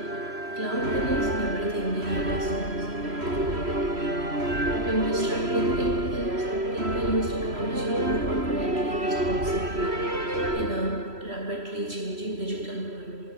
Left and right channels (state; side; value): late; left; 3.0 ms